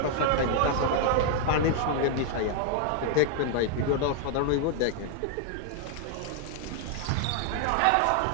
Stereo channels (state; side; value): different; both; correlation 0.00